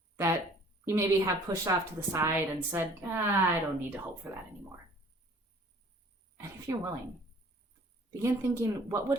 that you maybe have pushed off to the side and said, I don't need to hope for that anymore. And if you're willing, begin thinking, what would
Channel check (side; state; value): both; normal; correlation 0.53